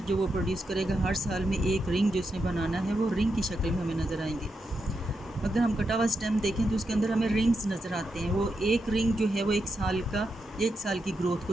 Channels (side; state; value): both; normal; correlation 0.85